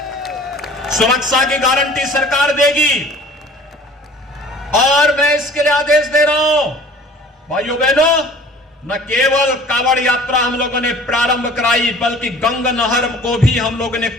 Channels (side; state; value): both; normal; correlation 0.47